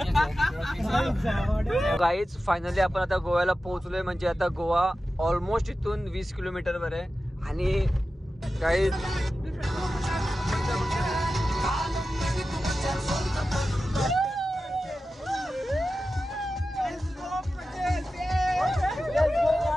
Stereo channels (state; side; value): normal; both; correlation 0.93